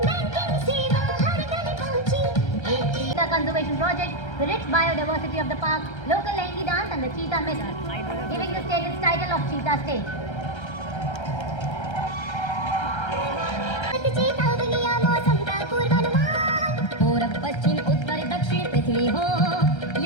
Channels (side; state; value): right; late; 1.3 ms